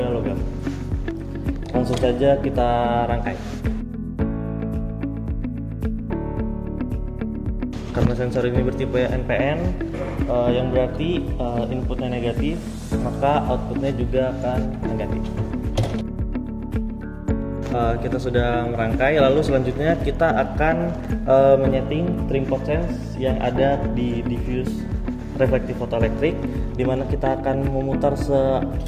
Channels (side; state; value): both; identical; correlation 1.00